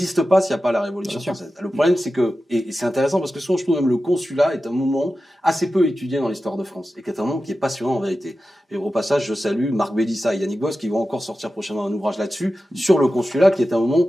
pas s'il n'y a pas la Révolution française. Le problème, c'est que, et c'est intéressant parce que souvent je trouve même le consulat est un moment assez peu étudié dans l'histoire de France et qui est un moment qui est passionnant en vérité. Et au passage, je salue Marc Bélissa et Yannick Boss qui vont encore sortir prochainement un ouvrage là-dessus, sur le consulat, qui est un moment,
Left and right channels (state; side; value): normal; both; correlation 0.93